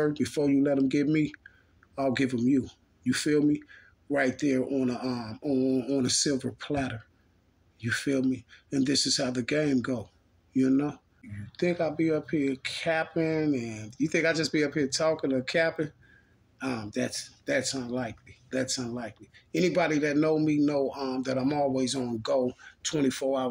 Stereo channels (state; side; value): identical; both; correlation 1.00